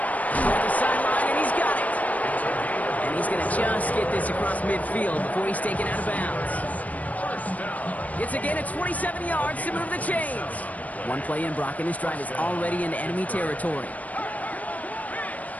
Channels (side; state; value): right; late; 0.072 ms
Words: the sideline, and he's got it. And he's going to just get this across midfield before he's taken out of bounds. It's again at 27 yards to move the chains. One play in, Brock, and his drive is already in enemy territory.